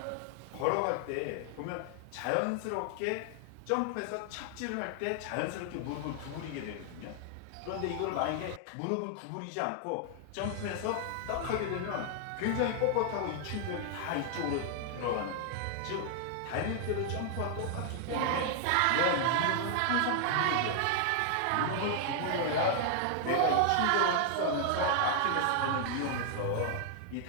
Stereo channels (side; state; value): both; different; correlation 0.00